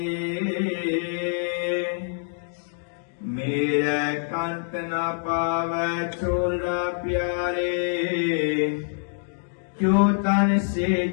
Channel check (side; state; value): right; silent; digital silence